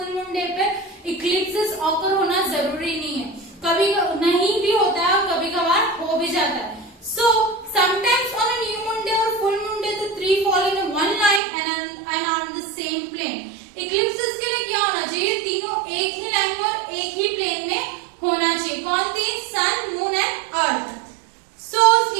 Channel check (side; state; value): left; drops out; at 11.4 s